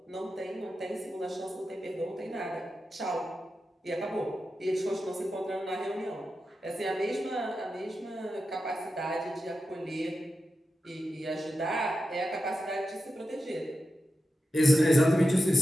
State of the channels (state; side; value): normal; both; correlation 0.90